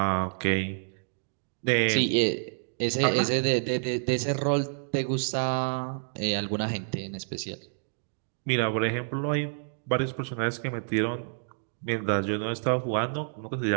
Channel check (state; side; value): silent; left; digital silence